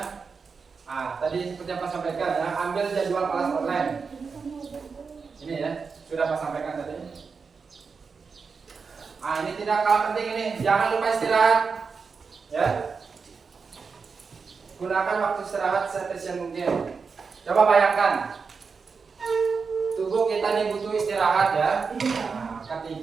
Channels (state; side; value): quieter; left; 5.2 dB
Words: tadi seperti yang Pak sampaikan ya, ambil jadwal kelas online. Ini ya, sudah Pak sampaikan tadi. Ini tidak kalah penting ini, jangan lupa istirahat. Ya. Gunakan waktu istirahat seefisien mungkin. Coba bayangkan, tubuh kita ini butuh istirahat ya. Nah,